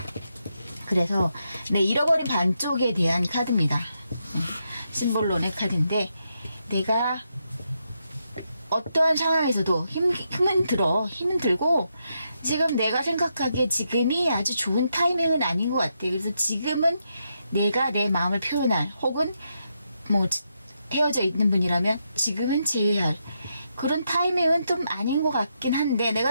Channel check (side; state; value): both; inverted; correlation -0.82